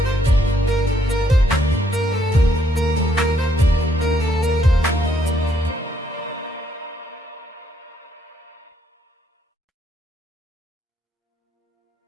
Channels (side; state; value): both; normal; correlation 0.71